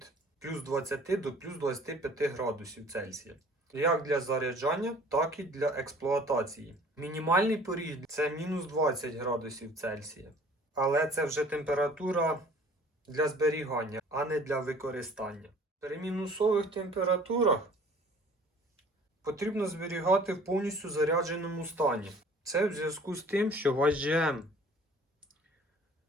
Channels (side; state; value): both; normal; correlation 0.51